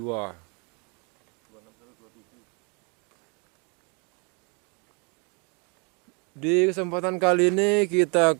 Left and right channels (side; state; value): left; quieter; 33.7 dB